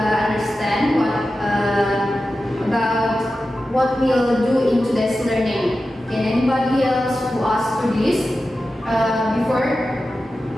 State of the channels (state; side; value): normal; both; correlation 0.93